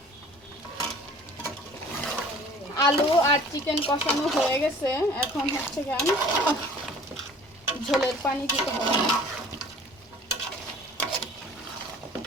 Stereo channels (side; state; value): both; normal; correlation 0.49